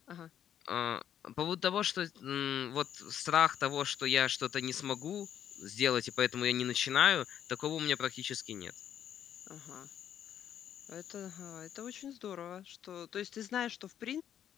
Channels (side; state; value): right; quieter; 9.8 dB